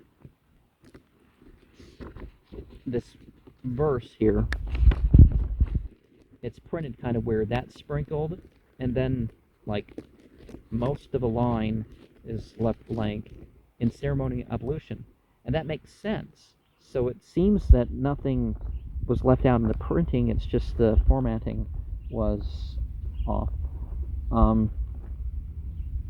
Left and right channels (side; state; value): both; identical; correlation 1.00